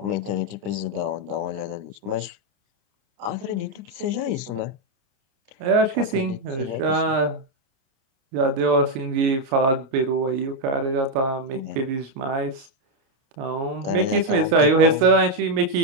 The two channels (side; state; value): left; late; 29 ms